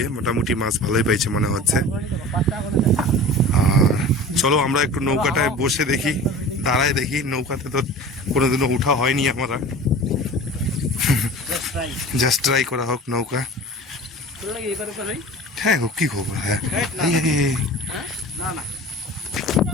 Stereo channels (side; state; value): both; normal; correlation 0.38